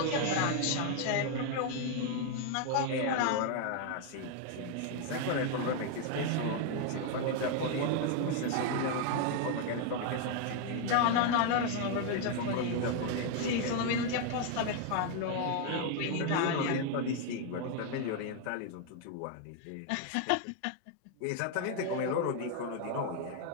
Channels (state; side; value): different; both; correlation 0.00